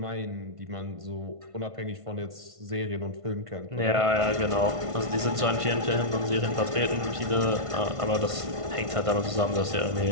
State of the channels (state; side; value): late; left; 1.5 ms